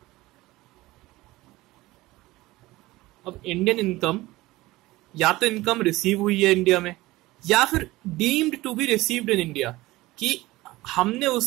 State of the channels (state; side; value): quieter; left; 19.0 dB